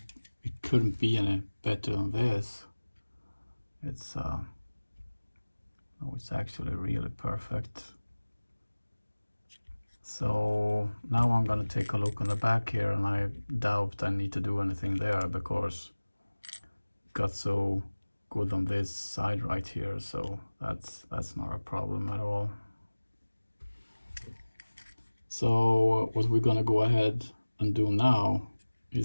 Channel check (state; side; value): inverted; both; correlation -1.00